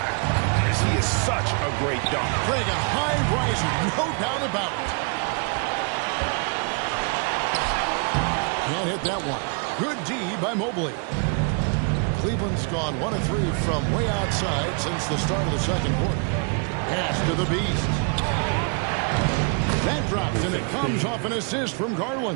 goodness, he is such a great dunk. Craig, a high riser, no doubt about it. Can't hit that one. Good D by Mobley. Cleveland's gone 1 of 3 from way outside since the start of the second quarter. Pass to the Beast. That drops, and it comes off an assist from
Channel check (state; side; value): quieter; left; 37.2 dB